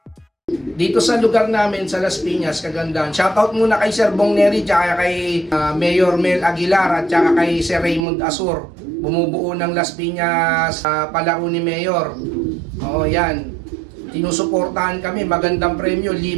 Dito sa lugar namin, sa Las Piñas, Cagandaan. Shoutout muna kay Sir Bong Neri, tsaka kay Mayor Mel Aguilar, at tsaka kay Sir Raymond Asur. Bumubuo ng Las Piñas palaro ni Mayor. Oo, yan. Tinusuportahan kami, magandang premyo,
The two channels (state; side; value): drops out; left; at 8.1 s